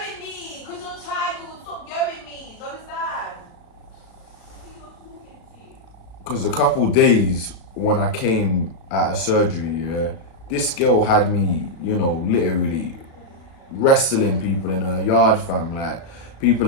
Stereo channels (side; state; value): right; late; 36 ms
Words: me, because you're tired. Stop yelling me. Do you understand? Because a couple days when I came out of surgery, yeah, this girl had me, you know, literally wrestling people in her yard, fam. Like, people